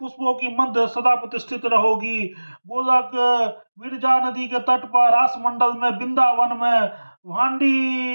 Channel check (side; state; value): both; inverted; correlation -1.00